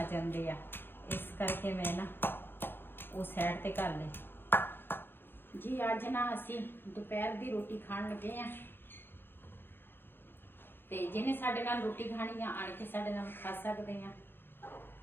ਜਾਂਦੇ ਆ, ਇਸ ਕਰਕੇ ਮੈਂ ਨਾ ਉਹ ਸਾਈਡ ਤੇ ਕਰ ਲਈ ਜੀ। ਅੱਜ ਨਾ ਅਸੀਂ ਦੁਪਹਿਰ ਦੀ ਰੋਟੀ ਖਾਣ ਲੱਗੇ ਆ, ਤੇ ਜਿਹਨੇ ਸਾਡੇ ਨਾਲ ਰੋਟੀ ਖਾਣੀ ਆ ਆਣ ਕੇ ਸਾਡੇ ਨਾਲ ਖਾ ਸਕਦੇ ਆ।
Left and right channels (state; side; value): late; right; 0.098 ms